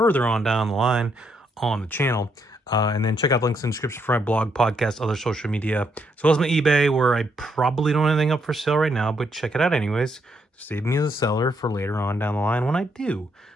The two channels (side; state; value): both; normal; correlation 0.76